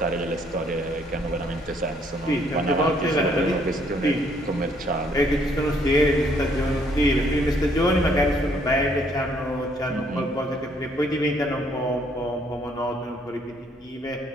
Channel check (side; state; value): both; normal; correlation 0.66